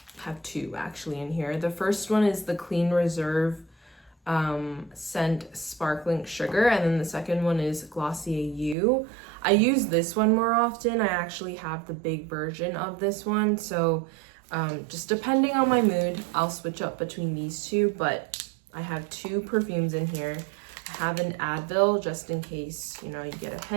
have two actually in here. The first one is the Clean Reserve scent Sparkling Sugar, and then the second one is Glossier You. I use this one more often. I actually have the big version of this one, so just depending on my mood, I'll switch up between these two, but I have two perfumes in here. I have an Advil just in case, you get a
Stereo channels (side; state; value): left; drops out; at 8.8 s